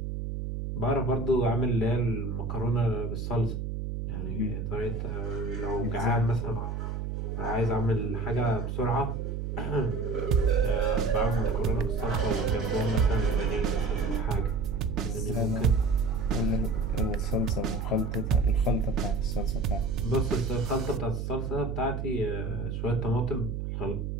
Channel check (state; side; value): noise; right; hum, 4 dB below the sound